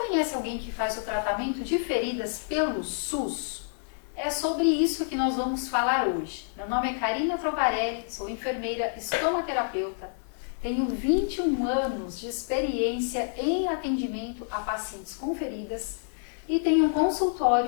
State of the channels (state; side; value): silent; right; digital silence